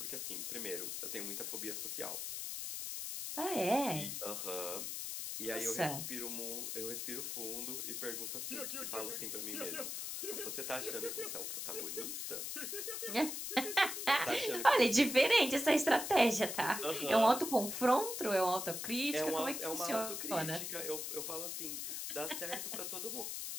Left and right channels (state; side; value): noise; left; hiss, 4 dB below the sound